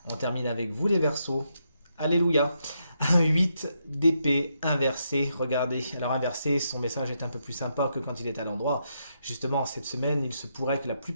On termine avec vous, les Verseaux. Alléluia. Un 8 d'épée inversé. Regardez, alors inversé, son message est un peu plus sympa que quand il est à l'endroit. Justement, cette semaine, il se pourrait que la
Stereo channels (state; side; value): inverted; both; correlation -0.80